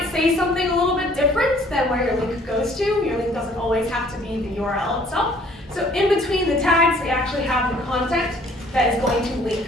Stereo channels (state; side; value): normal; both; correlation 0.58